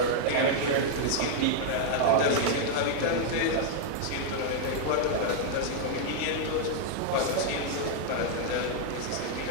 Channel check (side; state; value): both; different; correlation -0.01